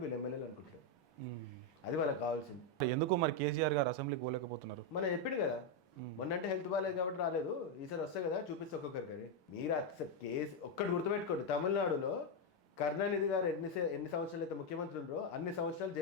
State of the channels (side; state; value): both; normal; correlation 0.03